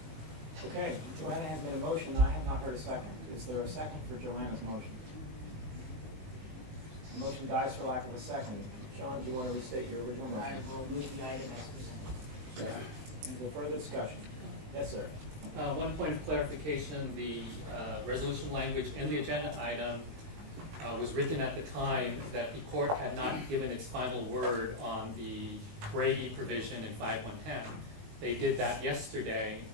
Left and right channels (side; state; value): left; late; 19 ms